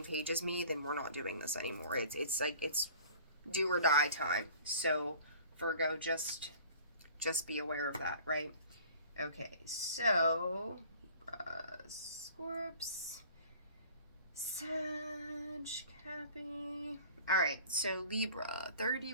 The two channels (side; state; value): both; inverted; correlation -0.47